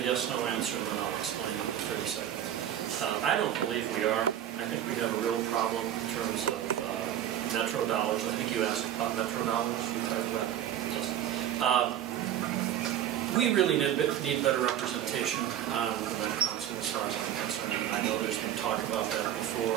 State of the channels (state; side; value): quieter; left; 11.0 dB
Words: answer, and then I'll explain in 30 seconds. I don't believe we are. I think we have a real problem in terms of metro dollars. I think you asked about metro dollars. You talked about it. Yes. We really need better representation on the Met Council as far as I'm concerned. I know there's been talk about that